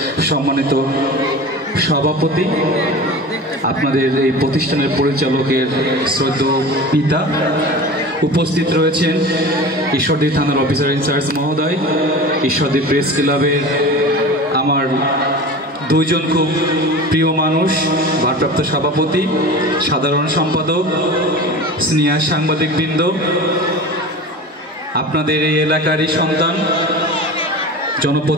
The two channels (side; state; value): both; normal; correlation 0.34